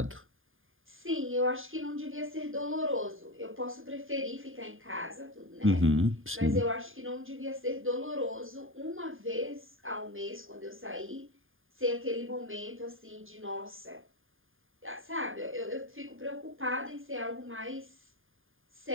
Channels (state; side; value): late; left; 0.59 ms